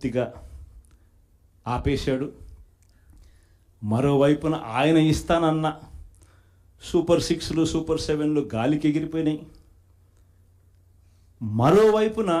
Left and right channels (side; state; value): both; identical; correlation 1.00